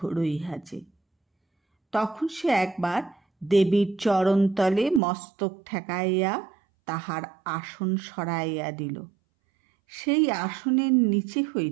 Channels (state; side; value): drops out; left; at 5.0 s